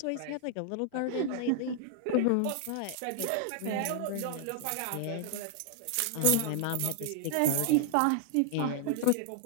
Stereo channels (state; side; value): different; both; correlation 0.00